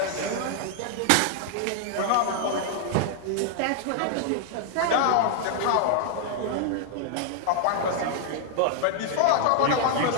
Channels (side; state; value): both; different; correlation 0.00